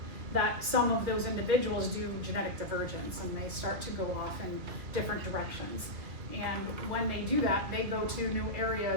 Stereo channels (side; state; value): left; late; 2.5 ms